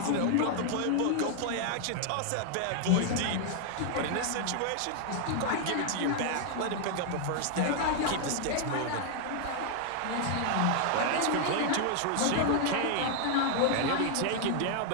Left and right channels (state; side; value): different; both; correlation 0.00